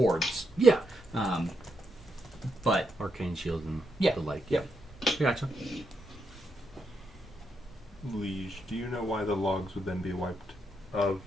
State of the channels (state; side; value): normal; both; correlation 0.81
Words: Yeah. But Arcane shield and Yeah. the like. Yep. Gotcha. Liege, do you know why the logs would then be wiped of